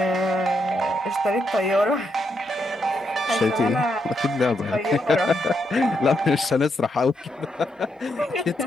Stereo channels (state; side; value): normal; both; correlation 0.80